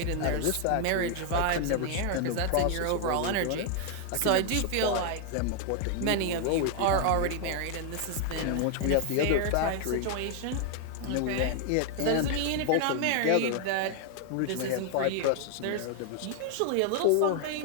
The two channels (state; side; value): different; both; correlation 0.00